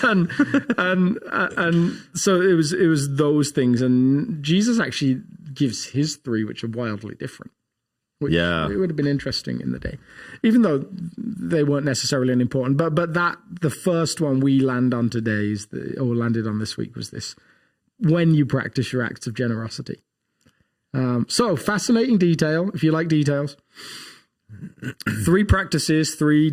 And so it was those things, and Jesus actually gives his 3, which are wildly different. Which it would have been interesting in the day, even though they weren't necessarily unimportant. But that the first one we land on today landed on this week was this: when you practice your acts of generosity. So fascinating detail. If you like details, 3 practices, 3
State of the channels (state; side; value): identical; both; correlation 1.00